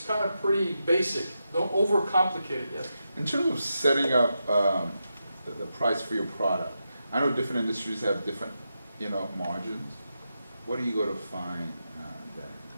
kind of pretty basic. Don't overcomplicate it yet. In terms of setting up the price for your product, I know different industries have different, margins. What do you go to find that?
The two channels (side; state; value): both; inverted; correlation -0.87